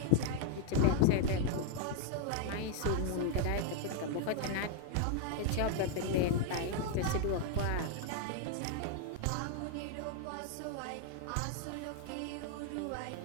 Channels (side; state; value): both; different; correlation 0.00